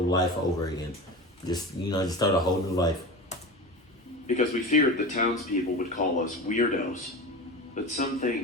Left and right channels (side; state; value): both; normal; correlation 0.28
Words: life over again. Just start a whole new life. Because we feared the townspeople would call us weirdos. But some